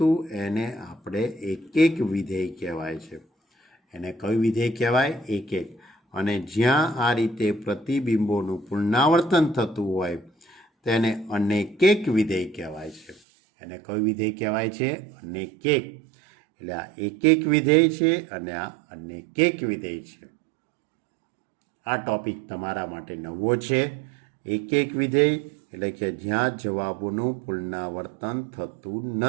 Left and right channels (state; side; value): drops out; left; at 13.2 s